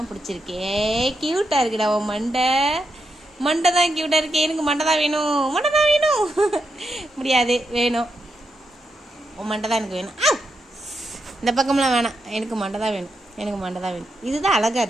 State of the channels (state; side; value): normal; both; correlation 0.84